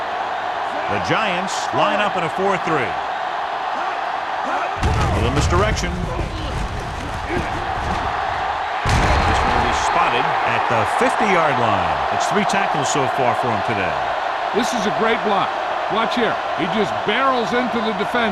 The Giants line up in a 4-3. A little misdirection. This one will be spotted at the 50-yard line. It's 3 tackles so far for him today. This is a great block. Watch here. He just barrels into the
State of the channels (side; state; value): both; identical; correlation 1.00